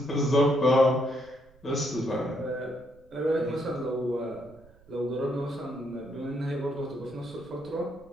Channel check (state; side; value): noise; right; rumble, 27 dB below the sound